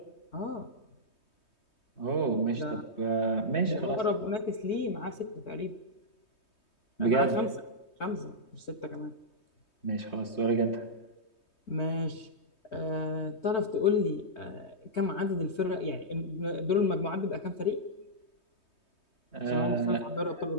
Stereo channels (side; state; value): right; late; 3.2 ms